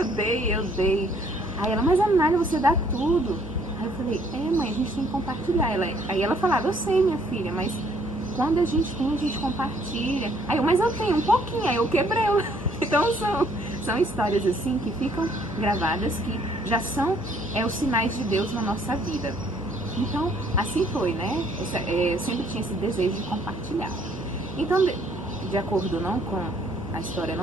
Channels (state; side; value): normal; both; correlation 0.63